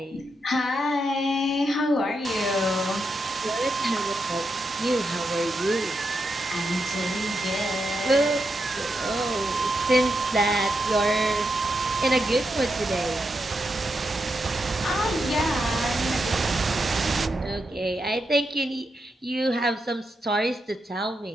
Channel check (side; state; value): both; normal; correlation 0.84